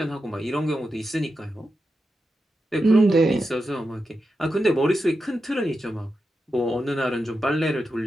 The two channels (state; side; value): normal; both; correlation 0.89